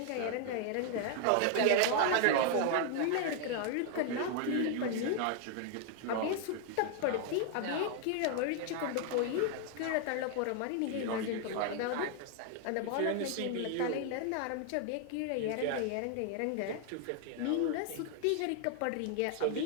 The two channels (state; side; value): different; both; correlation 0.00